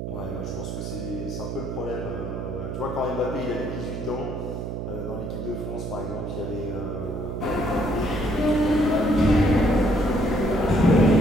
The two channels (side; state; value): right; noise; hum, 5 dB below the sound